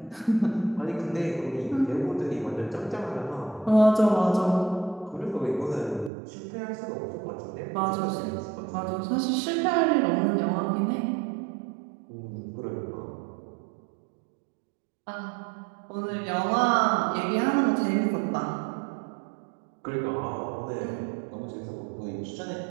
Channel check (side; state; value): left; drops out; at 6.1 s